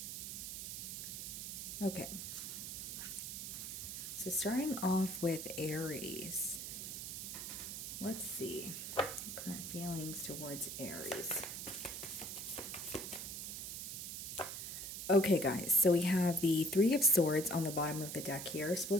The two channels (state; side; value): noise; right; hiss, 6 dB below the sound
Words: Okay. So starting off with Aries. Let's see. Current feelings towards Aries. Okay, guys, so we have the Three of Swords on the bottom of the deck here.